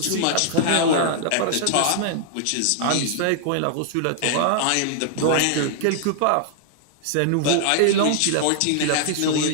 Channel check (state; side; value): different; both; correlation -0.01